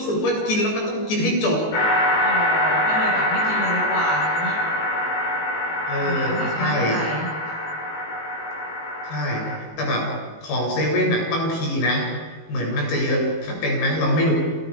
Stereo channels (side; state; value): right; late; 19 ms